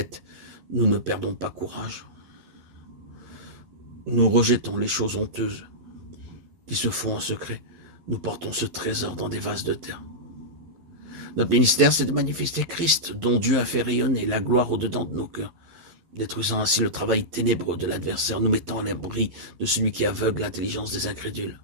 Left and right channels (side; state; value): left; late; 11 ms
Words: nous ne perdons pas courage. Nous rejetons les choses honteuses qui se font en secret. Nous portons ce trésor dans des vases de terre. Notre ministère, c'est de manifester Christ, dont Dieu a fait rayonner la gloire au-dedans de nos cœurs, détruisant ainsi le travail ténébreux de l'adversaire, nous mettant à l'abri de celui qui aveugle l'intelligence des incrédules.